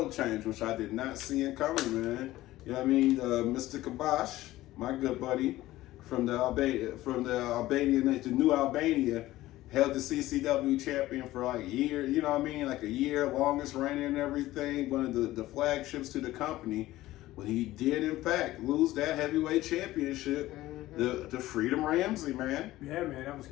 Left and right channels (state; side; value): quieter; right; 16.3 dB